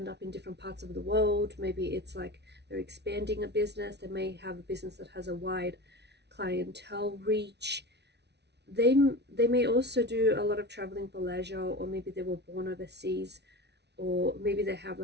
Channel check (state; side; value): late; left; 0.50 ms